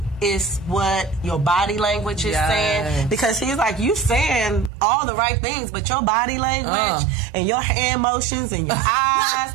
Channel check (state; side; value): drops out; left; at 4.7 s